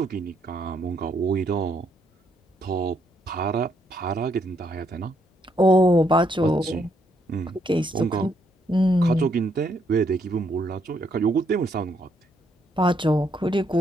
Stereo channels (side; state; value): both; normal; correlation 0.73